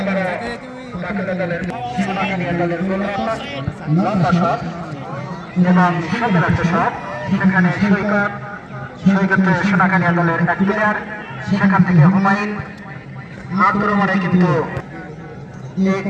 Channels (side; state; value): both; identical; correlation 1.00